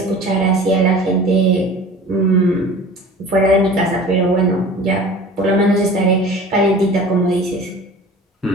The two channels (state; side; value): normal; both; correlation 0.41